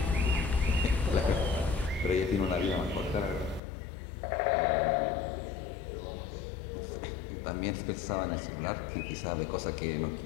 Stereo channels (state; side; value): drops out; right; at 3.6 s